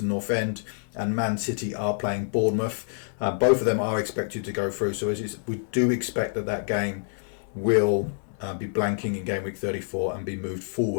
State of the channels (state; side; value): silent; right; 60 dB below the other